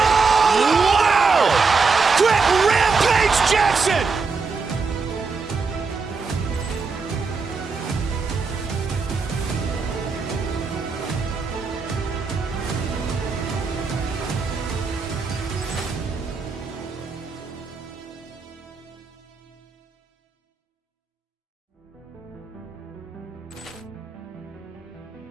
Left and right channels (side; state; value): left; quieter; 4.7 dB